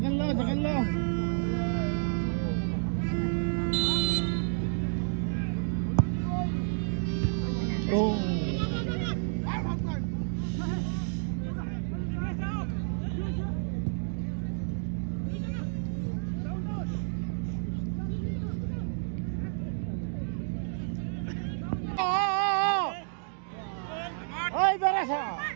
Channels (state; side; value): silent; left; digital silence